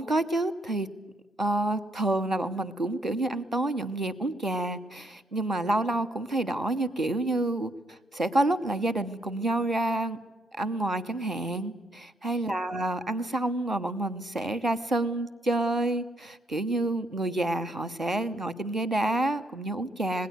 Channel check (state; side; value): normal; both; correlation 0.72